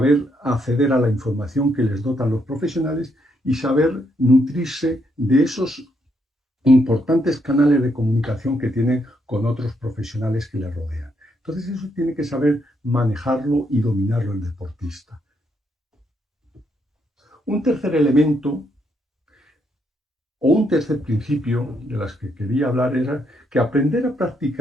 acceder a la información que les dotan los profesionales y saber nutrirse de esos importantes canales de comunicación que tienen con otros profesionales que les rodean. Entonces eso tiene que saber manejarlo y dominarlo el deportista. Un tercer elemento o un tercer principio de las que quería hablar era que aprender a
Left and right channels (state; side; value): normal; both; correlation 0.76